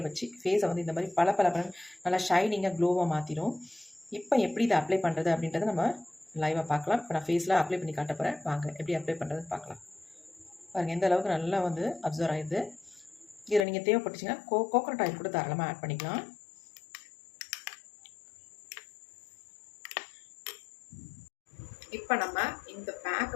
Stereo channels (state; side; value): drops out; right; at 13.7 s